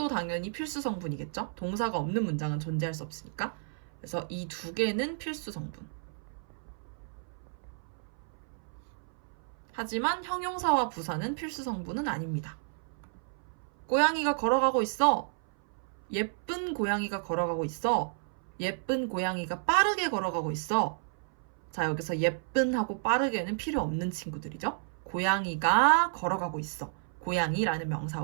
당연히 필수 성분이겠죠? 동사가 없는 문장은 존재할 수 없으니까. 그래서 이 2개는 필수 성분. 하지만 형용사와 부사는 필수 성분은 아닙니다. 고양이가 걸어가고 있어. 예쁜 고양이가 걸어가고 있어. 예쁜 고양이가 빠르게 걸어가고 있어. 자, 여기서 예쁜하고 빠르게는 필요 없는 친구들이죠. 고양이가 걸어가고 있어. 고양이라는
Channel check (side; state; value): left; silent; 57 dB below the other